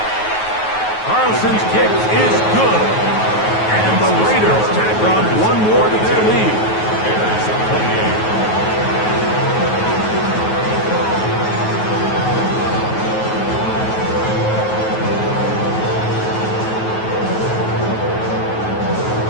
Carlson's kick is good. And the Raiders tack on one more to their lead.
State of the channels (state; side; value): late; right; 9.3 ms